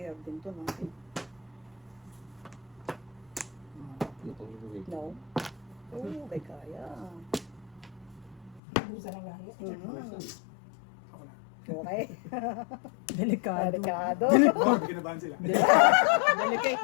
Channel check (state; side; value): drops out; right; at 8.6 s